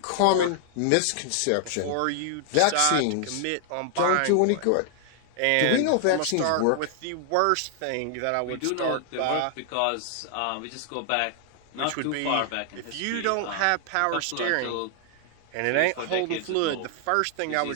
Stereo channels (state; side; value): different; both; correlation 0.00